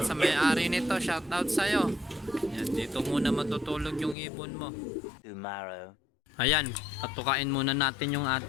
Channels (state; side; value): drops out; right; at 4.2 s